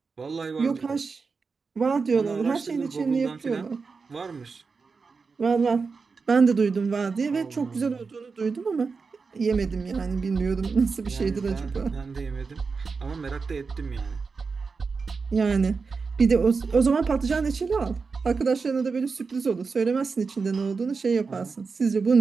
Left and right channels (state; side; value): quieter; left; 4.8 dB